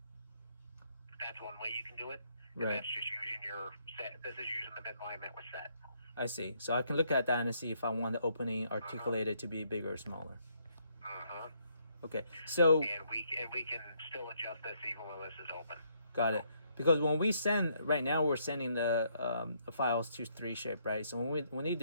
That's one way you can do it. Right. That's just using your set. This is using the midline that was set. I see. So I can look at that and see if I want the opening articulated to be bigger or smaller. Okay. So. And we can still adjust this even when this is open. Got it. Because when we send, right now we're sending the files to 3shape, right? So when we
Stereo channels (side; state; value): both; inverted; correlation -0.71